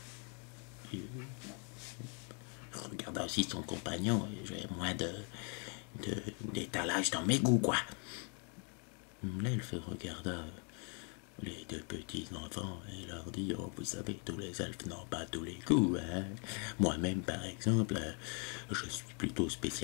Je regarda aussi son compagnon. J'avais moins d'étalage dans mes goûts, quoi. L'elfe regarda les deux petits-enfants et leur dit: oh, vous savez, tous les elfes n'ont pas tous les coups, hein. Moi-même, par exemple, je suis plutôt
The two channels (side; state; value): right; quieter; 38.1 dB